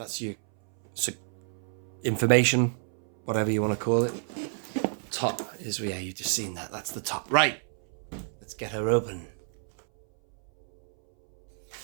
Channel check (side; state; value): left; silent; 58 dB below the other